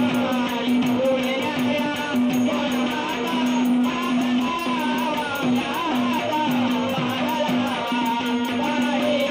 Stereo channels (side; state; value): both; identical; correlation 1.00